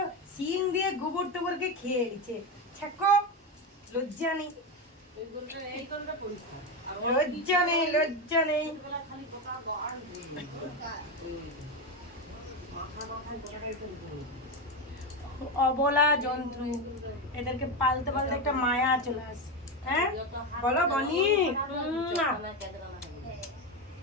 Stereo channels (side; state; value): both; normal; correlation 0.13